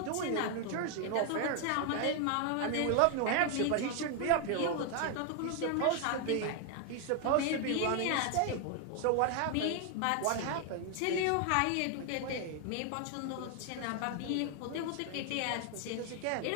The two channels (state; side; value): different; both; correlation 0.01